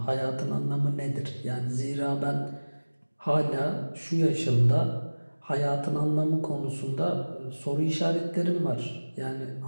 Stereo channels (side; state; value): both; inverted; correlation -1.00